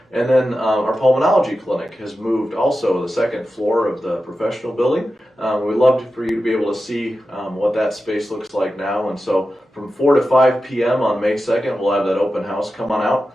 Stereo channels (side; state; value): both; normal; correlation 0.92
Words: And then our pulmonology clinic has moved also to the second floor of the professional building. We'd love for you to be able to see what that space looks like now. And so from 4 to 5 p.m. on May 2nd, we'll have that open house. Come on